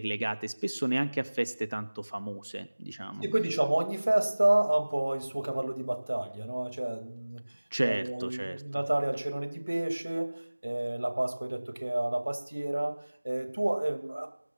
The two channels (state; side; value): inverted; both; correlation -1.00